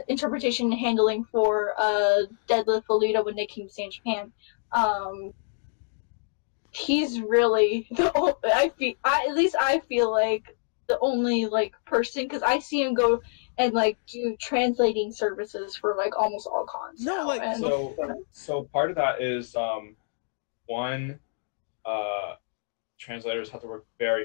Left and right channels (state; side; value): silent; right; digital silence